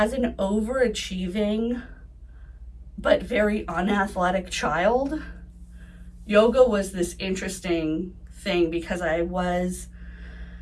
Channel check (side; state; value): both; identical; correlation 1.00